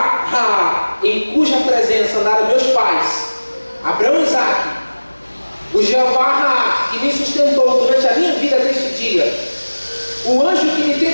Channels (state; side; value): inverted; both; correlation -1.00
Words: Ra, em cuja presença andaram meus pais, Abraão e Isaque, o Jeová Ra, que me sustentou durante a minha vida até este dia, o anjo que me